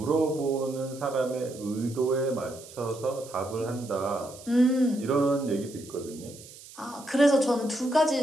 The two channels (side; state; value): right; noise; hiss, 18 dB below the sound